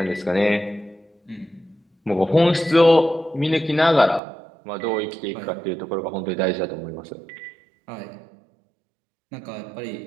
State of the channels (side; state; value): left; drops out; at 4.2 s